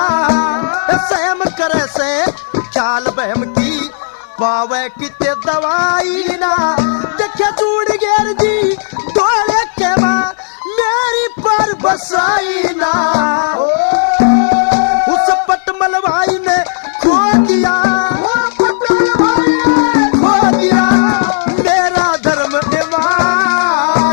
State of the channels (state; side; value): silent; right; digital silence